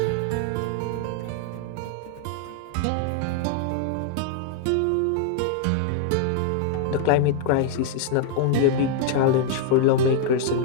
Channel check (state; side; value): different; both; correlation 0.00